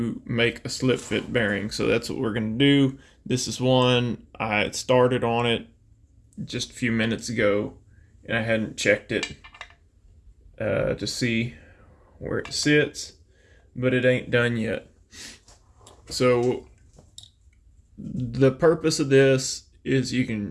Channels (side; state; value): both; identical; correlation 1.00